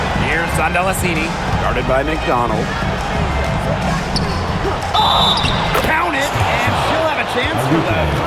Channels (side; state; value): both; identical; correlation 1.00